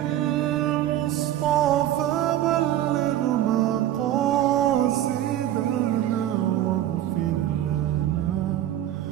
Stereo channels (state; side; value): quieter; left; 12.5 dB